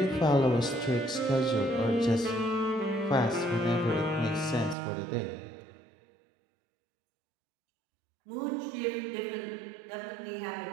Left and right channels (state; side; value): drops out; left; at 4.8 s